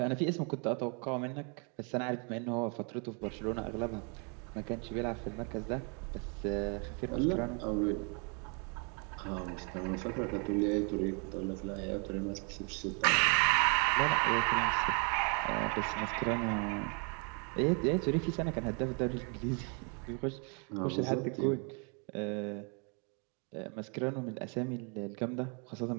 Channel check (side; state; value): left; quieter; 36.1 dB